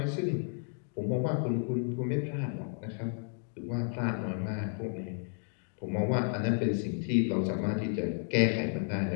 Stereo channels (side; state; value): right; silent; 56 dB below the other